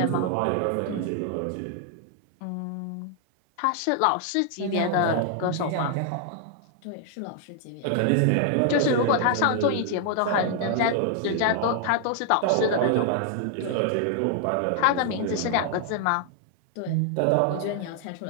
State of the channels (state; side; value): different; both; correlation 0.00